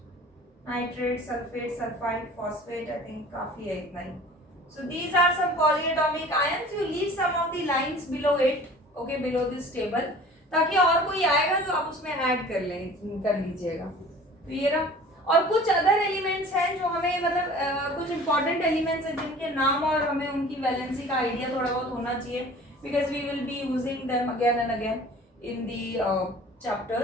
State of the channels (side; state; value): both; normal; correlation 0.45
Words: Nitrate, sulfate, sulfide, phosphate, I think काफी है इतना ही. So these are some polyatomic ions. You leave some of the lines below it, okay, below this table, ताकि और कोई आएगा तो आप उसमें ऐड कर लीजिएगा. तो ये रहा. और कुछ अदर एलिमेंट्स हैं जो हमें मतलब कुछ इंपॉर्टेंट एलिमेंट्स हैं जिनके नाम और हमें उनकी वैलेंसी का आइडिया थोड़ा बहुत होना चाहिए, because we will be using them again and again in the